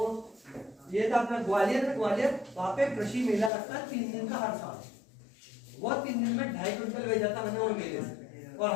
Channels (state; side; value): drops out; right; at 3.5 s